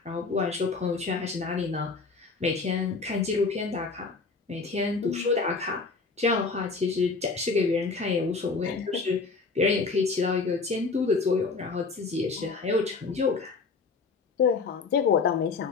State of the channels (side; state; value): right; quieter; 4.4 dB